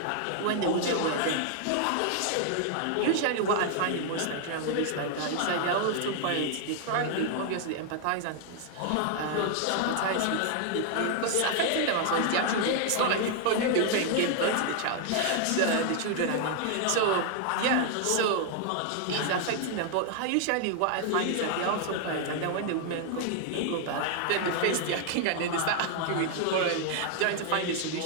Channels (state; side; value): different; both; correlation 0.00